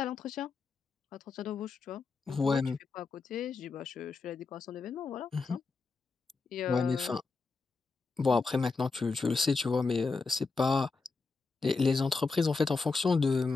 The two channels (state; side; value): quieter; right; 4.2 dB